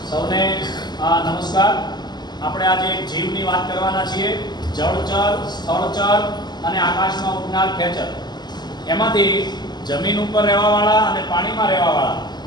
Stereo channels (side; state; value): right; late; 0.21 ms